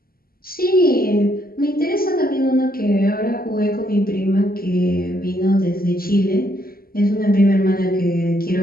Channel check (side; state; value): right; late; 0.43 ms